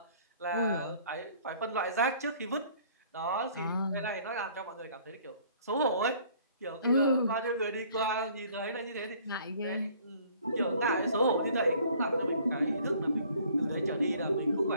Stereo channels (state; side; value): inverted; both; correlation -0.56